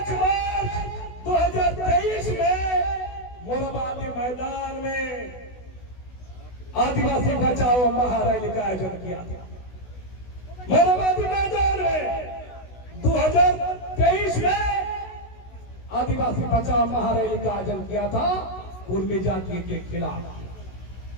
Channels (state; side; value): late; right; 16 ms